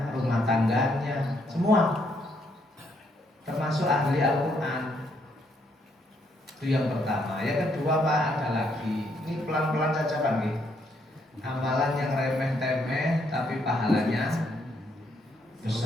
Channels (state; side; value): normal; both; correlation 0.73